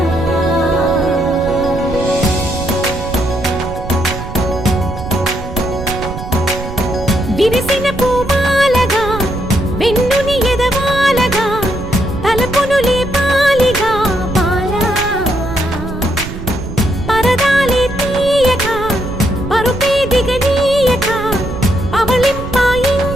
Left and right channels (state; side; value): noise; right; rumble, 9 dB below the sound